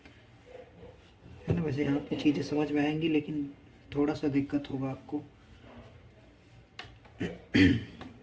है ना। वैसे यहाँ पे चीज़ें समझ में आएंगी, लेकिन थोड़ा सा दिक्कत होगा आपको।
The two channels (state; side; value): identical; both; correlation 1.00